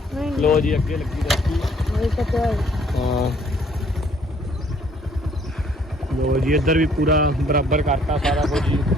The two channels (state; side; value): normal; both; correlation 0.62